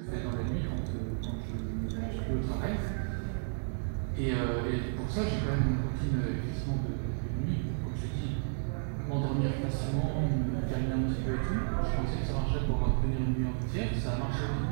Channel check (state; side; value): silent; left; digital silence